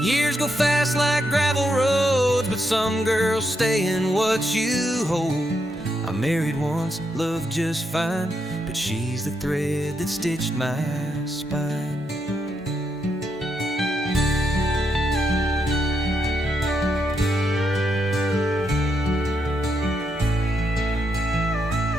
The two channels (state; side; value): normal; both; correlation 0.80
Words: go fast like gravel roads, but some girls stay in what you hold. I married once, loved just fine, but she's the thread that stitched my spine.